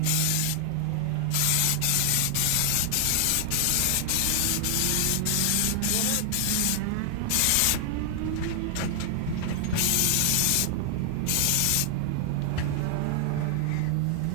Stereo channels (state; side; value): different; both; correlation 0.00